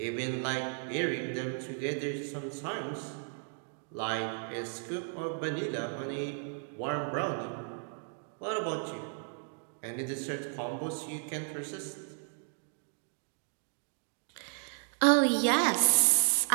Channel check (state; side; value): silent; left; 55 dB below the other